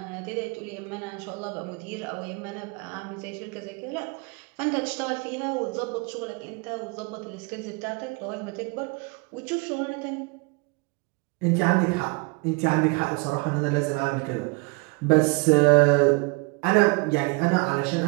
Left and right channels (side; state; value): left; quieter; 29.0 dB